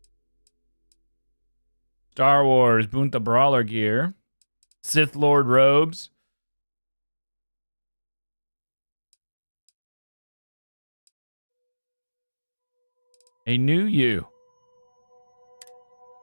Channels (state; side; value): inverted; both; correlation -1.00